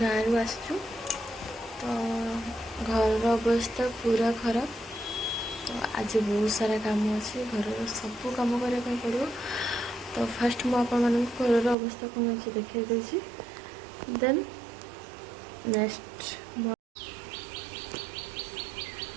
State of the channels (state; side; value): drops out; left; at 11.8 s